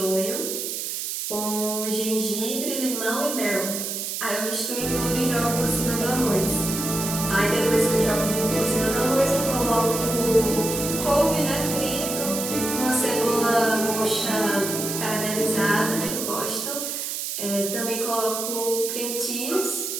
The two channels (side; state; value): right; noise; hiss, 4 dB below the sound